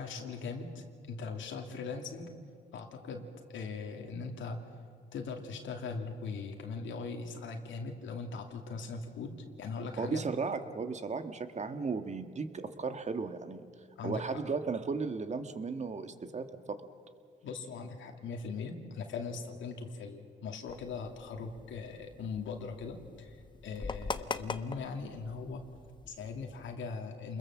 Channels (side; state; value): both; normal; correlation 0.49